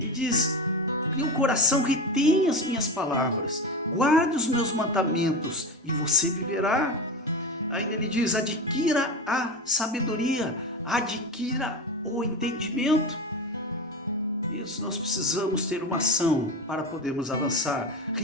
diz, que o coração retenha as minhas palavras, guarde os meus mandamentos e você viverá. Ainda ele diz, adquira a sabedoria, adquira o entendimento. Isso, nós precisamos ter uma ação para podermos avançar.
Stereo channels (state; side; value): normal; both; correlation 0.23